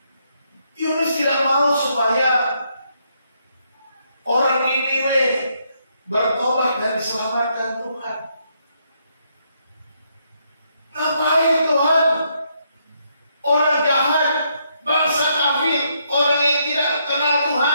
Yunus tidak mau supaya orang Niniwe bertobat dan diselamatkan Tuhan. Ngapain Tuhan? Orang jahat, bangsa kafir, orang yang tidak kenal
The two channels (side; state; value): both; inverted; correlation -0.75